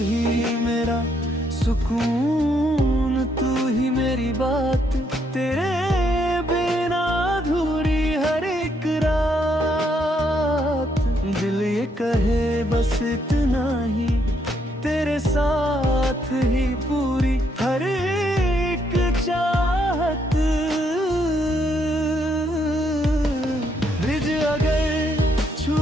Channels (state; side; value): normal; both; correlation 0.74